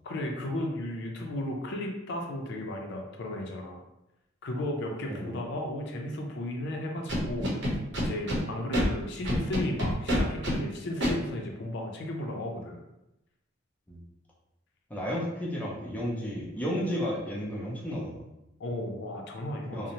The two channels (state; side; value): normal; both; correlation 0.62